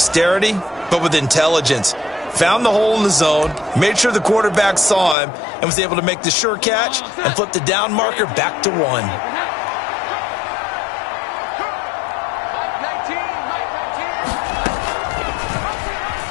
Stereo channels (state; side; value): drops out; right; at 5.2 s